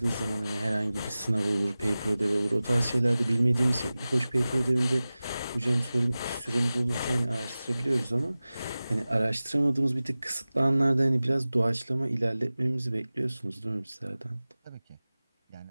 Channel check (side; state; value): both; inverted; correlation -0.97